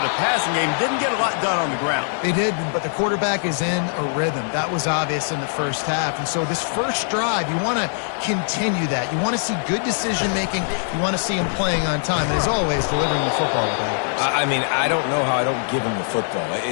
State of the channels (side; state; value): right; silent; digital silence